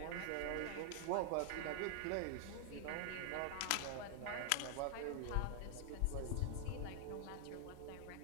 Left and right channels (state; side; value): different; both; correlation 0.00